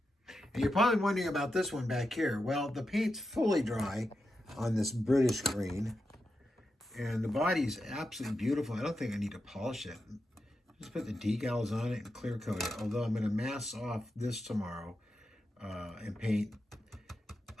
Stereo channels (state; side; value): normal; both; correlation 0.87